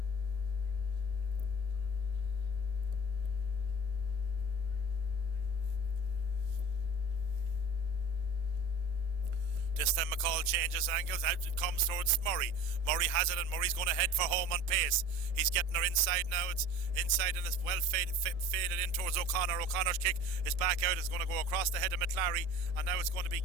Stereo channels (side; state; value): left; late; 1.7 ms